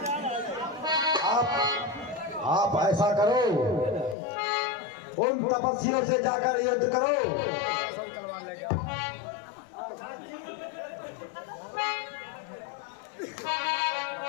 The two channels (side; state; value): right; drops out; at 4.2 s